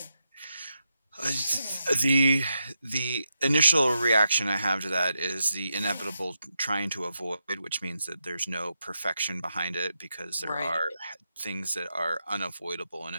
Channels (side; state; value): both; inverted; correlation -0.85